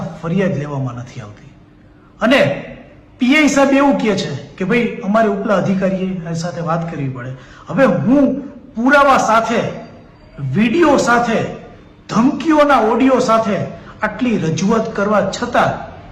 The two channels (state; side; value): identical; both; correlation 1.00